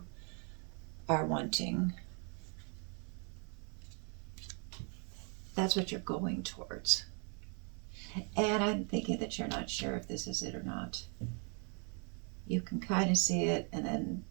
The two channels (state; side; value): quieter; left; 38.3 dB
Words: are wanting. That's what you're going towards. And I'm thinking that you're not sure if this is it or not. You can kind of see it, and then